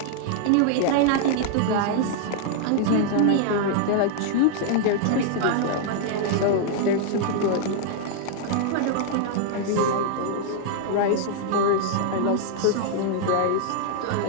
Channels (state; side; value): different; both; correlation -0.01